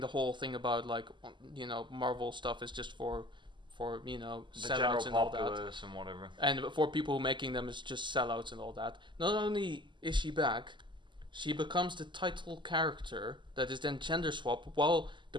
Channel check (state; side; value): late; left; 0.23 ms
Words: whole thing about, like, you know, Marvel stuff is just for you know, The sellouts general and all that. populace and whatever. And for people making them is just sellouts and all that. Not only is she back, she becomes the title character that is then gender swapped, while